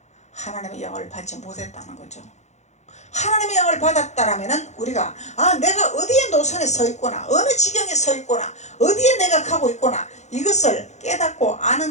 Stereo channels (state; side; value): late; right; 0.33 ms